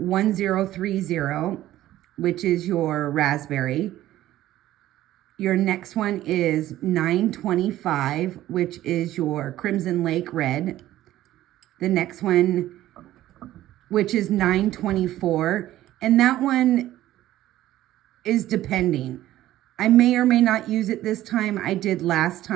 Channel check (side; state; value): left; quieter; 14.2 dB